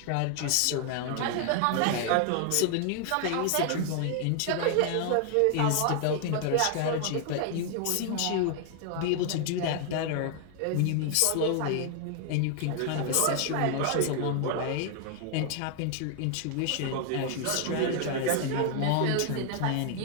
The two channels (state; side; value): different; both; correlation 0.00